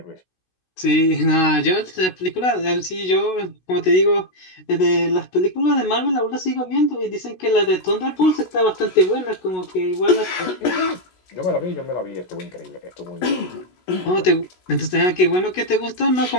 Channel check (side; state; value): right; late; 16 ms